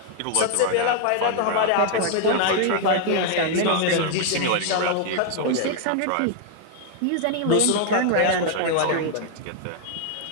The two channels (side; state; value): both; different; correlation 0.00